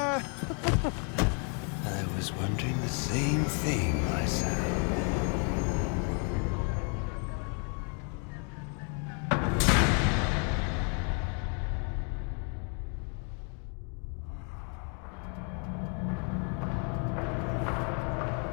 was wondering the same thing myself.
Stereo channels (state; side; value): quieter; right; 39.1 dB